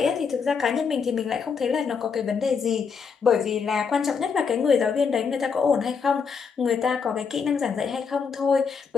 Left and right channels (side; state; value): right; quieter; 5.8 dB